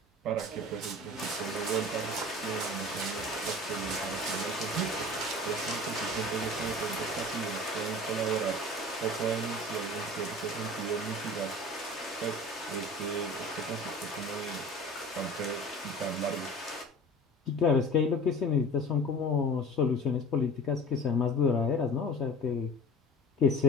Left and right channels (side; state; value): both; normal; correlation 0.40